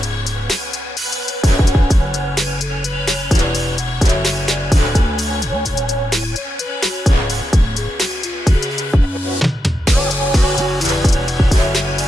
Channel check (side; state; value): both; normal; correlation 0.86